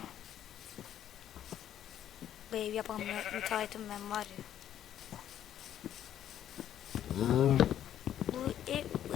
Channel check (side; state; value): right; quieter; 10.8 dB